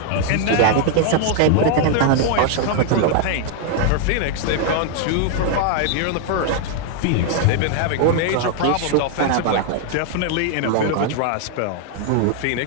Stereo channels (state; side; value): different; both; correlation 0.00